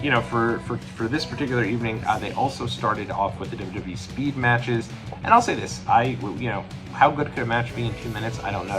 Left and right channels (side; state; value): both; identical; correlation 1.00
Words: for this particular evening, they also started off with the WWE speed matches. And I'll say this, how good could a match be in 2 minutes? I don't know.